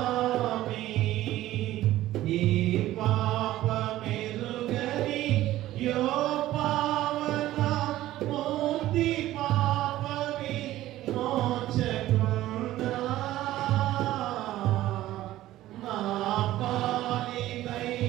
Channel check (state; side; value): quieter; left; 15.0 dB